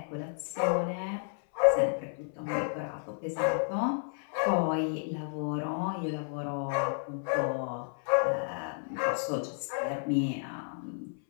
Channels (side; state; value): right; silent; 57 dB below the other